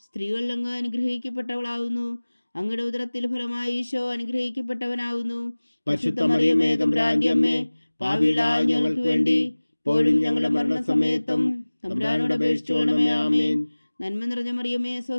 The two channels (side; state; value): both; inverted; correlation -1.00